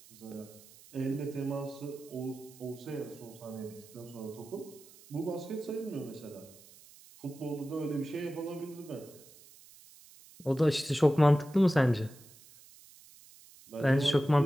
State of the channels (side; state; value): right; noise; hiss, 22 dB below the sound